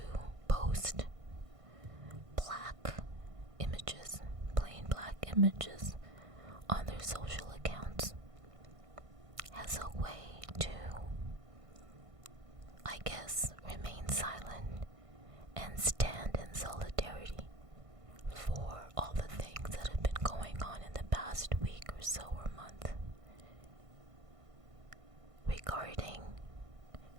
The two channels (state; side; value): late; left; 1.5 ms